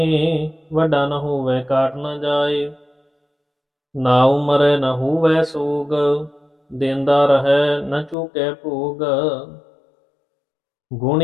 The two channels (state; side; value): drops out; right; at 8.2 s